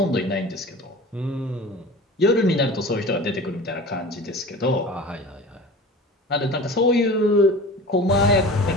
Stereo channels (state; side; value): normal; both; correlation 0.37